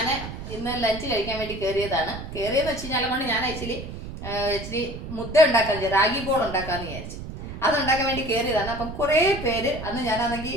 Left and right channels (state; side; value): noise; right; rumble, 9 dB below the sound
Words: ഇന്ന് ലഞ്ച് കഴിക്കാൻ വേണ്ടി കയറിയെന്ന് വെച്ച് കഴിഞ്ഞാൽ കൊണ്ട് ഞാൻ ഇച്ചിരി മുദ്ദ ഉണ്ടാക്കാൻ റാഗി ബോൾ ഉണ്ടാക്കാമെന്ന് വിചാരിച്ചു. അതുണ്ടാക്കാൻ വേണ്ടി കയറിയതാണ്. അപ്പം കുറേ പേര് അന്ന്